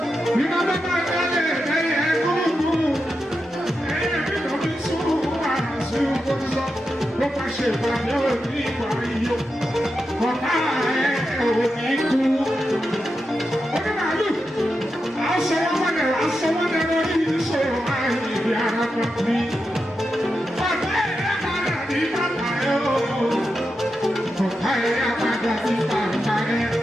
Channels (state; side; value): normal; both; correlation 0.88